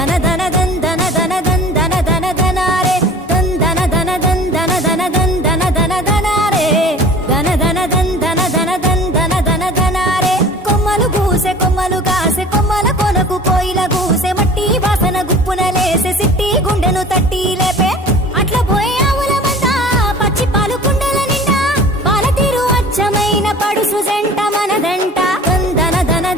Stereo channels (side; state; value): both; normal; correlation 0.44